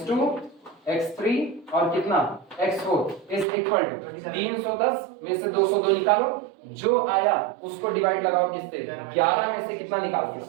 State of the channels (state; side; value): drops out; left; at 3.5 s